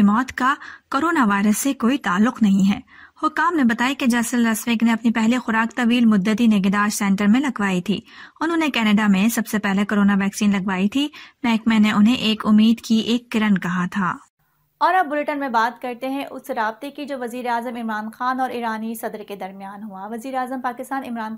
मौत का कोरोना वायरस से कोई ताल्लुक नहीं है। हुकाम ने बताया कि जैसल लस्विक ने अपनी पहली खुराक तवील मुद्दती निगहदाश्त सेंटर में लगवाई थी। उन्होंने कनाडा में सबसे पहले कोरोना वैक्सीन लगवाई थी। महकमे ने उन्हें एक उम्मीद की एक किरण कहा था। और अब बुलेटिन में बात करते हैं उस राब्ते की जो वज़ीर आज़म इमरान खान और ईरानी सदर के दरमियान हुआ। वज़ीर आज़म पाकिस्तान इमरान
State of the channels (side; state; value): both; identical; correlation 1.00